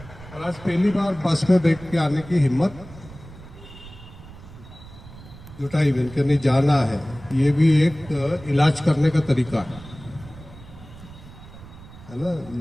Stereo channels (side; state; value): right; noise; rumble, 18 dB below the sound